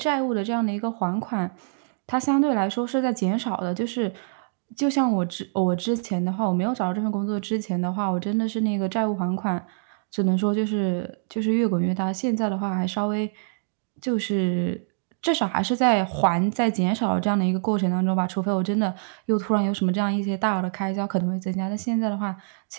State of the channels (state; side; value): silent; left; digital silence